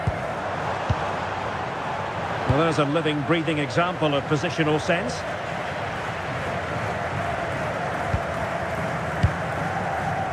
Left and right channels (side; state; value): both; identical; correlation 1.00